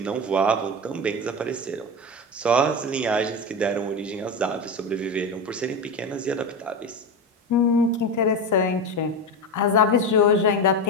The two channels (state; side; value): normal; both; correlation 0.20